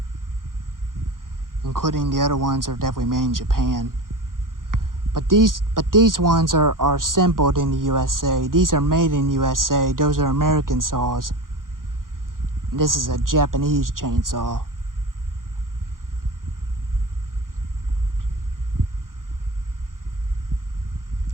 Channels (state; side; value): late; left; 0.90 ms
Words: other ones, are definitely made in Japan. But these ones are assembled in the USA. These are made in USA. Those are American saws. This is a Japanese chainsaw.